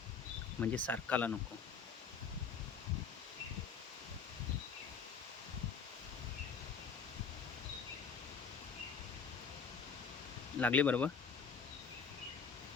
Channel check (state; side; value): quieter; right; 6.0 dB